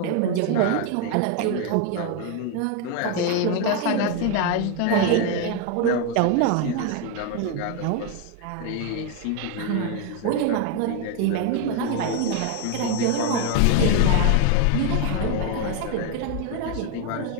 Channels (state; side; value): different; both; correlation 0.01